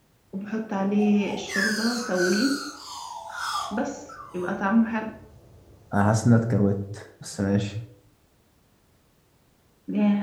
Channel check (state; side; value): identical; both; correlation 1.00